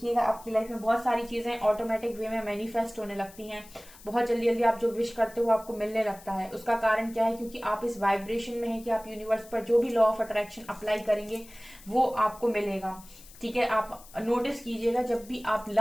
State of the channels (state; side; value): noise; left; hiss, 21 dB below the sound